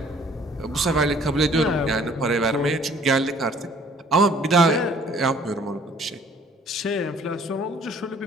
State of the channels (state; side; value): normal; both; correlation 0.57